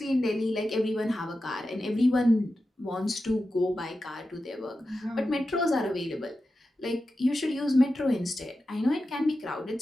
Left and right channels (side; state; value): both; normal; correlation 0.91